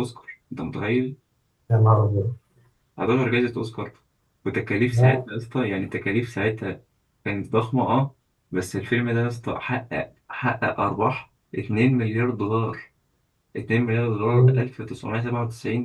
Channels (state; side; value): identical; both; correlation 1.00